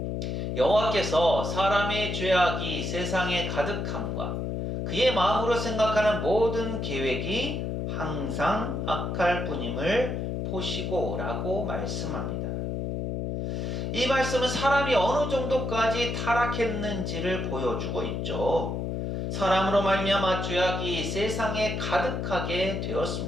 여호와께서 사람의 죄악이 세상에 가득함과 그의 마음으로 생각하는 모든 계획이 항상 악할 뿐임을 보시고 라고 말씀합니다. 이 말씀은 사람이 어느 정도까지 타락했는지를 보여주고 있죠. 사람으로 말미암아 죄악이 세상에 가득하게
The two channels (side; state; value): left; noise; hum, 2 dB below the sound